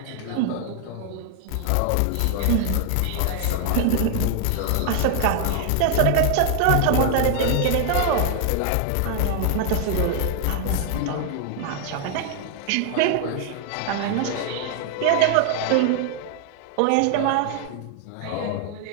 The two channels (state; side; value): different; both; correlation 0.00